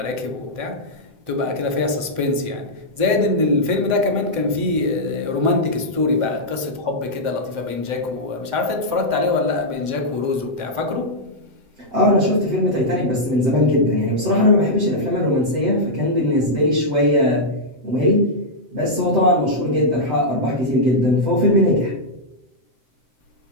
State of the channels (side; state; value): left; late; 7.8 ms